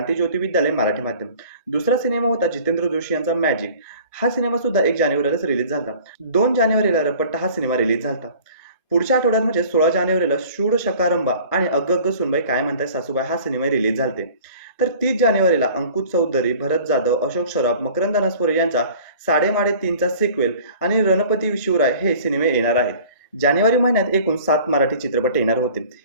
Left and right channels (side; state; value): both; inverted; correlation -0.47